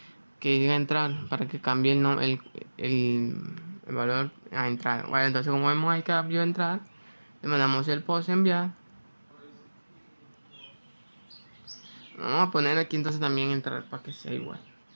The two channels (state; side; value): inverted; both; correlation -1.00